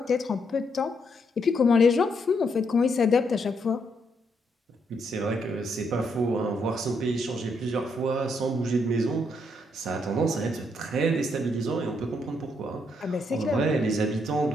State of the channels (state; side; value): normal; both; correlation 0.76